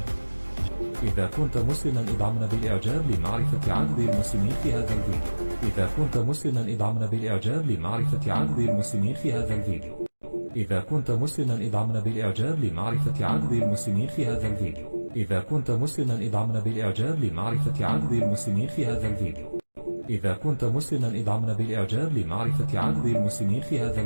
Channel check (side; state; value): both; inverted; correlation -1.00